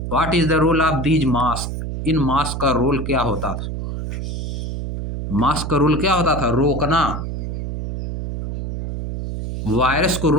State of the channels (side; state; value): right; noise; hum, 4 dB below the sound